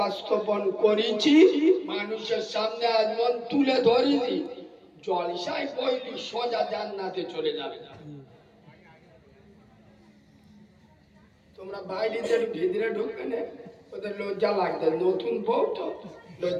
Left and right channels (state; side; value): identical; both; correlation 1.00